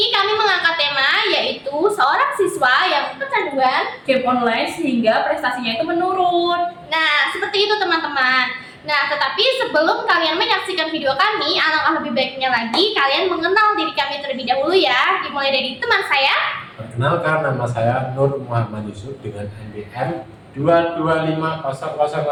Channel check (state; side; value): identical; both; correlation 1.00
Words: kami mengangkat tema yaitu seorang siswa yang kecanduan game online sehingga prestasinya itu menurun. Nah, seperti itu teman-teman. Nah, tetapi sebelum kalian menyaksikan video kami, alangkah lebih baiknya lagi kalian mengenal diri kami terlebih dahulu ya. Dimulai dari teman saya. Perkenalkan, nama saya Nur Muhammad Yusuf dengan NPM